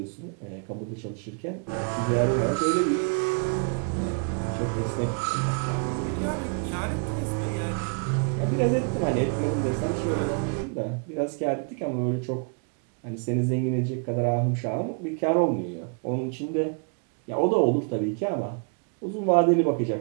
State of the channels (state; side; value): quieter; left; 38.6 dB